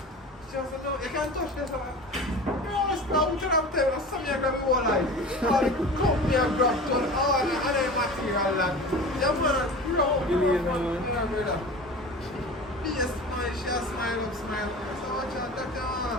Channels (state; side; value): normal; both; correlation 0.35